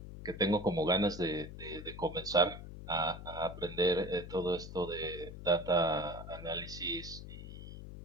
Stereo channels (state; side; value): noise; left; hum, 11 dB below the sound